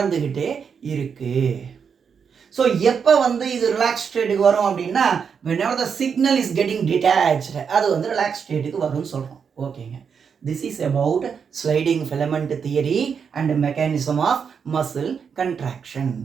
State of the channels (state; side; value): quieter; left; 6.6 dB